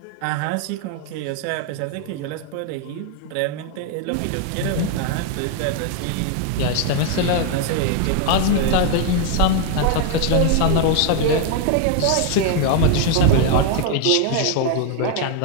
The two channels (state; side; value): different; both; correlation 0.00